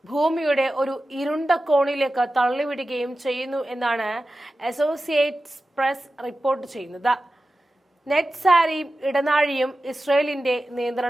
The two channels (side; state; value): both; normal; correlation 0.94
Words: ഭൂമിയുടെ ഒരു ഇരുണ്ട കോണിലേക്ക് തള്ളിവിടുകയും ചെയ്യുന്നു എന്നാണ് അസോസിയേറ്റഡ് പ്രസ് റിപ്പോർട്ട് ചെയ്യുന്നത്. നെറ്റ്സാരിയും ഇടനാഴിയും ഇസ്രയേലിന്റെ